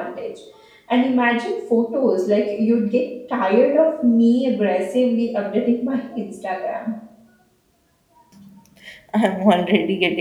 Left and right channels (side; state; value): both; identical; correlation 1.00